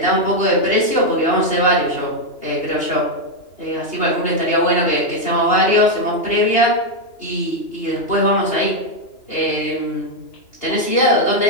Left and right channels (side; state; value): right; late; 2.9 ms